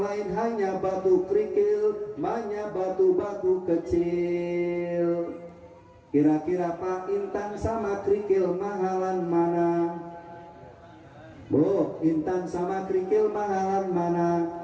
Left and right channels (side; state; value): both; identical; correlation 1.00